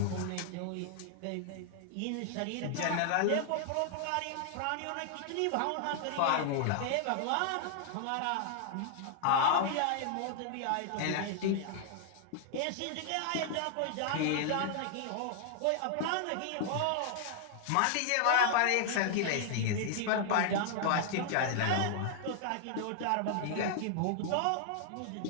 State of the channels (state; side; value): different; both; correlation -0.01